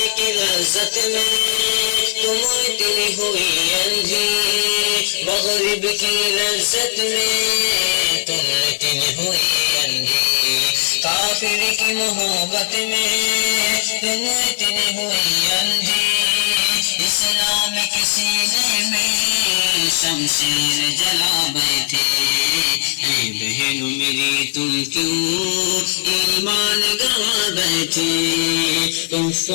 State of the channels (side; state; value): right; silent; digital silence